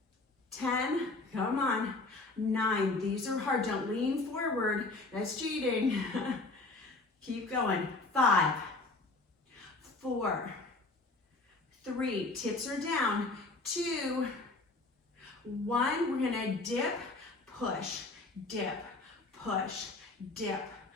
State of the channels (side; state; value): right; quieter; 3.3 dB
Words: 10, come on. 9, these are hard. Don't lean forward. That's cheating. Keep going. 5, 4, 3, tips are down. 2, 1, we're gonna dip, push, dip, push, dip,